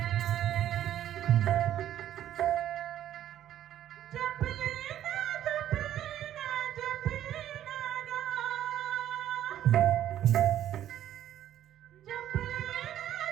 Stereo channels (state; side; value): quieter; left; 11.6 dB